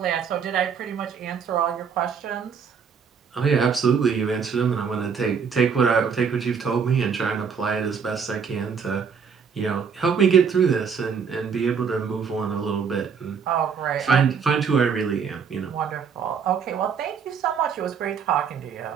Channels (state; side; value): quieter; left; 6.4 dB